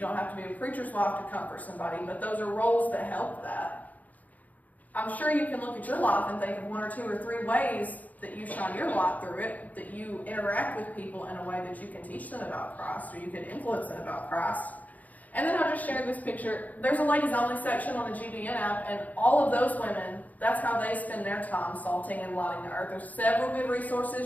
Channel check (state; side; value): late; right; 0.076 ms